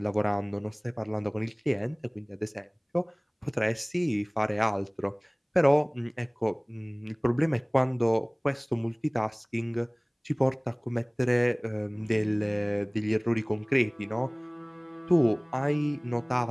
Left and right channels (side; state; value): both; identical; correlation 1.00